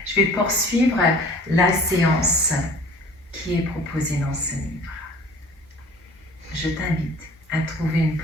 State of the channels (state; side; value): normal; both; correlation 0.48